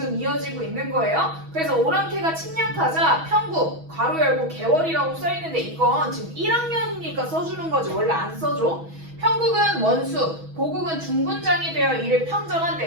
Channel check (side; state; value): left; late; 6.2 ms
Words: 이어지고 있는 거예요. 그래서 오랑캐가 침략하자 평국 괄호 열고 개월이라고 써있는데 이건 지금 1학년이니까 써주는 거지. 원래 안 써줘. 평국은 원수, 보국은 중군장이 되어 이를